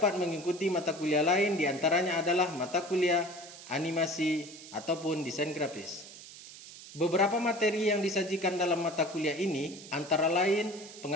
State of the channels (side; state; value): right; noise; hiss, 16 dB below the sound